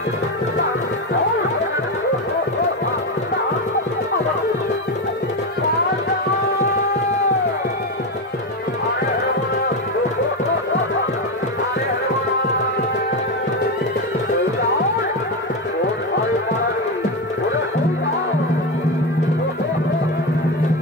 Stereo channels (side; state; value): both; normal; correlation 0.14